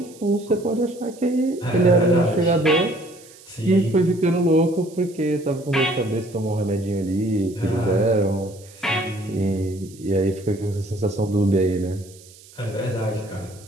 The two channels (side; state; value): right; noise; hiss, 23 dB below the sound